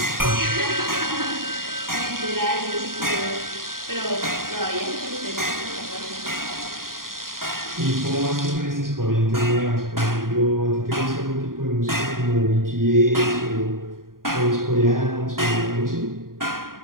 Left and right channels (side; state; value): left; late; 0.91 ms